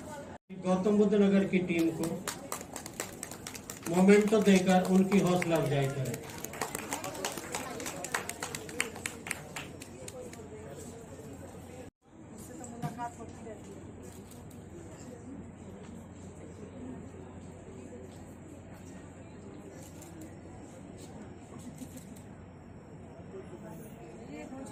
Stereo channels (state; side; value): identical; both; correlation 1.00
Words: गौतम बुद्ध नगर की टीम को मोमेंटो देकर उनकी हौसला अफजाई करें। ये